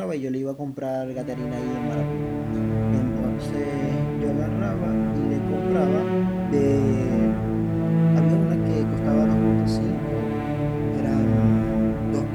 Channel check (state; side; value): identical; both; correlation 1.00